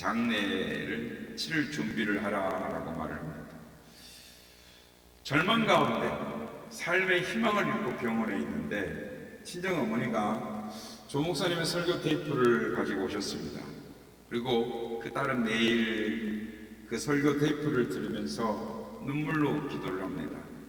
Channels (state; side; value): identical; both; correlation 1.00